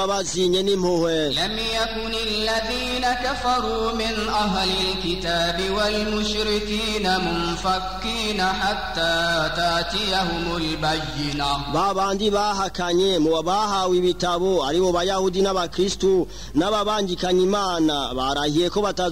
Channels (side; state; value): both; identical; correlation 1.00